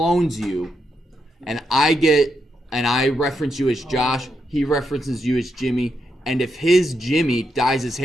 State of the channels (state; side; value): normal; both; correlation 0.82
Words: you, and I reference you as Josh, he references you as Jimmy, and if his Jimmy dyes his